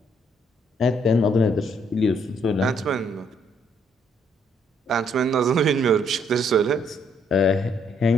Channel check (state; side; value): normal; both; correlation 0.69